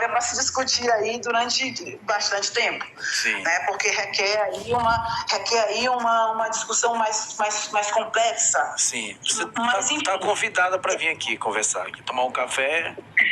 para se discutir aí durante bastante tempo. Sim. Né? Porque requer aí uma discussão mais complexa. Sim. Você está convidada para vir aqui conversar, aqui, tomar um café.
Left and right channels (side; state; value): both; identical; correlation 1.00